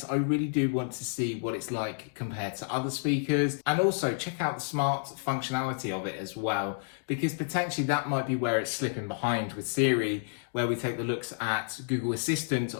I really do want to see what it's like compared to other speakers, and also check out the smart functionality of it as well, because potentially that might be where it's slipping behind with Siri, where we take the looks at Google Assistant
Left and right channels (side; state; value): right; silent; digital silence